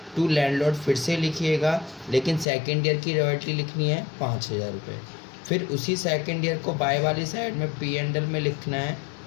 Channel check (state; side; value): drops out; right; at 2.5 s